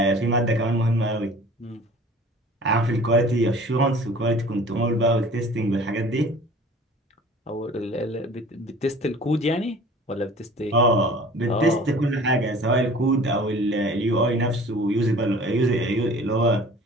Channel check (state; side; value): normal; both; correlation 0.46